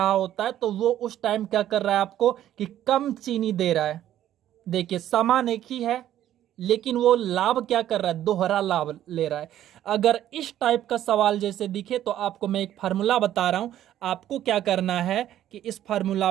होता है तो वो उस टाइम क्या कर रहा है आपको कि कम चीनी दे रहा है। देखिए सामान एक ही है लेकिन वो लाभ क्या कर रहा है? दोहरा लाभ ले रहा है। अगर इस टाइप का सवाल जैसे दिखे तो आपको मैं एक फार्मूला बता रहा हूं, आपको क्या करना है कि इस फार्मूला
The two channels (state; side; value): quieter; left; 12.0 dB